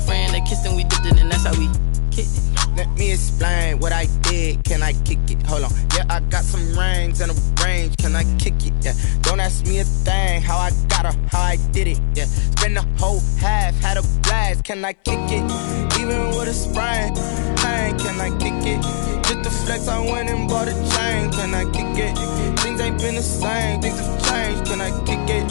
friend, they kissed and we dipped it, and that's how we kicked it. Let me explain what I did. Can can I kick it? Hold on. Yeah, I got some rings and a range, can I kick it? Yeah, don't ask me a thing, how I got her, how I did it. Yeah, spend the whole half, had a blast, can I kick it? Even with a sprain, pain, can I kick it? Just the flex, I went and bought a chain, can I kick it? Things ain't been the same, things have changed, can I kick it?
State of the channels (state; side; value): silent; right; digital silence